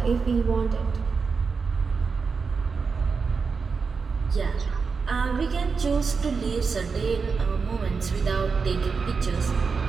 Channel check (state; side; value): quieter; left; 5.1 dB